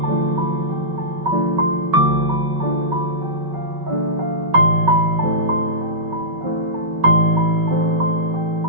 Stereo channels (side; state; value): left; late; 5.3 ms